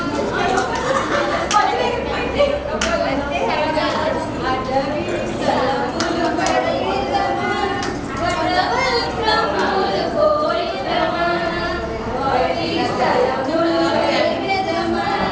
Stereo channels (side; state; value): both; identical; correlation 1.00